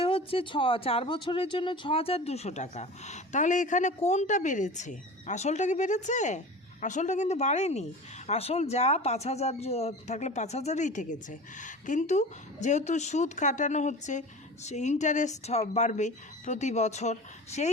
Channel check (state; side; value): normal; both; correlation 0.35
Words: হচ্ছে 4 বছরের জন্য 6,200 টাকা। তাহলে এখানে কোনটা বেড়েছে? আসলটা কি বেড়েছে? আসলটা কিন্তু বাড়েনি। আসল যা 5,000 থাকলে 5,000ই থেকেছে, কিন্তু যেহেতু সুদ কাটানো হচ্ছে, সে ইন্টারেস্ট বাড়বে প্রতি বছর, সেই